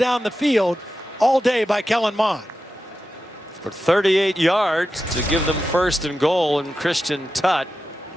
the field all day by Kellen Mond. For 38 yards to give them 1st and goal, and Christian Tutt,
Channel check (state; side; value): normal; both; correlation 0.91